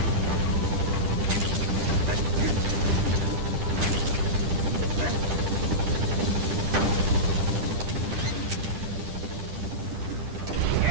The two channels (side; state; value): left; late; 10 ms